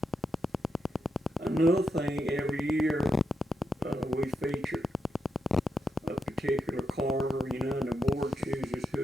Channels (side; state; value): both; normal; correlation 0.84